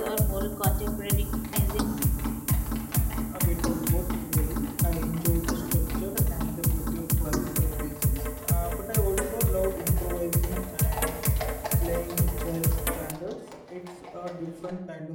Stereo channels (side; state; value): both; identical; correlation 1.00